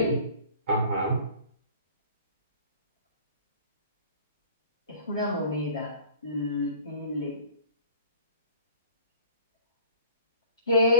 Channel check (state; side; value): inverted; both; correlation -0.50